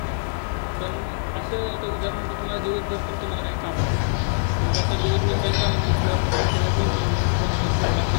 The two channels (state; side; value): silent; right; digital silence